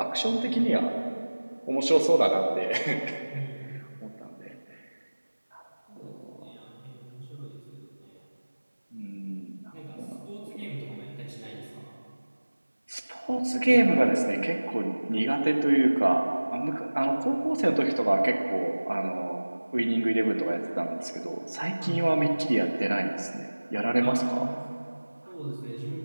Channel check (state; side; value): inverted; both; correlation -1.00